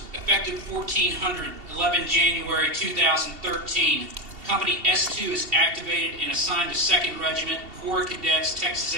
Effective 1400, 11 January 2013. Company S-2 is activated and assigned to 2nd Regiment, Corps of Cadets, Texas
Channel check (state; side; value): late; left; 2.7 ms